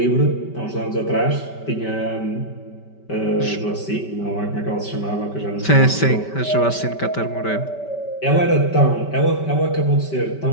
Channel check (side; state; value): right; late; 5.2 ms